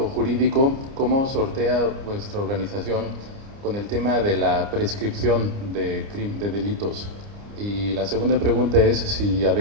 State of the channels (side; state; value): left; late; 29 ms